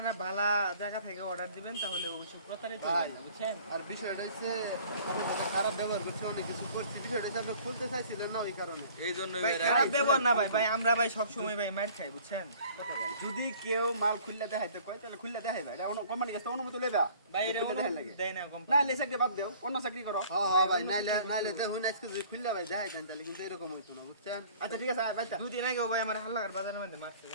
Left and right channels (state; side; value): inverted; both; correlation -0.52